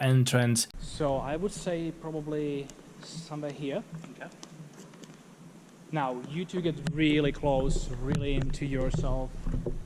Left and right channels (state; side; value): identical; both; correlation 1.00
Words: entrance. So I would say probably somewhere here. Okay. Now, you two get really close, really into yourself.